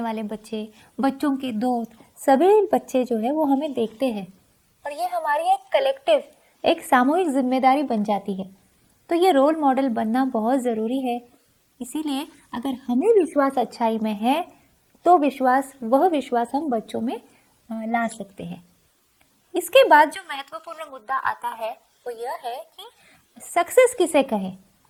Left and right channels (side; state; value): both; identical; correlation 1.00